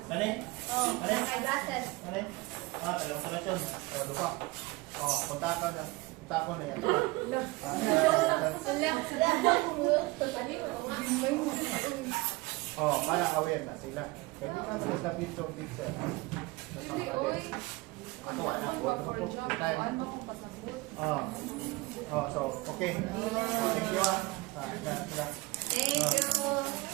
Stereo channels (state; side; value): quieter; left; 22.5 dB